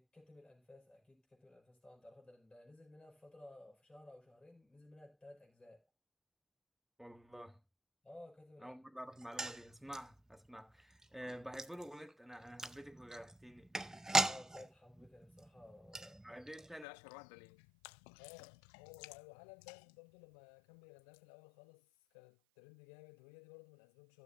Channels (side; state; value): right; drops out; at 16.9 s